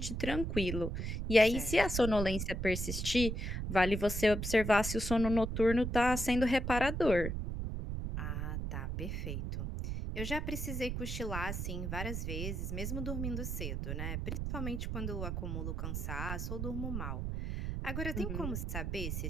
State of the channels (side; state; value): right; noise; rumble, 3 dB below the sound